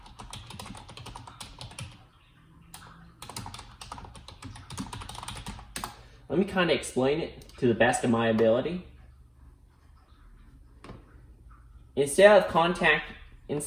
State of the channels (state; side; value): identical; both; correlation 1.00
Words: Let me kind of explain it to the best of my ability. Instead